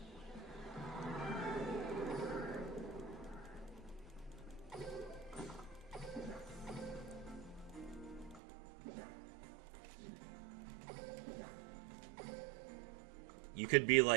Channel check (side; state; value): left; drops out; at 8.4 s